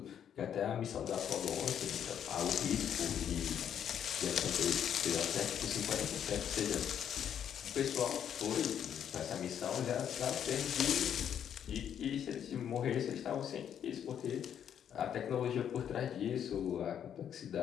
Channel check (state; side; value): quieter; right; 9.1 dB